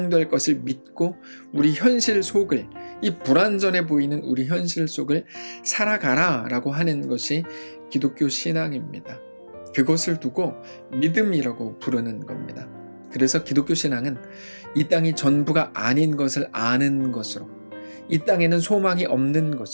것을 믿고 우리 현실 속을 이 불완전해 보이는 우리 현실 속을 살아가라 라고 하는 것이 기독교 신앙입니다. 그것을 두고 믿음이라고 부르는 겁니다. 그래서 기독교 신앙은 이 땅이 전부가 아닌 것을 아는 것으로, 이 땅에는 소망이 없는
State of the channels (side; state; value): both; inverted; correlation -1.00